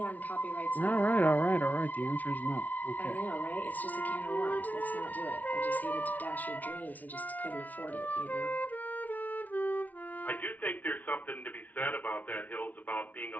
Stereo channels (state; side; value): late; right; 0.075 ms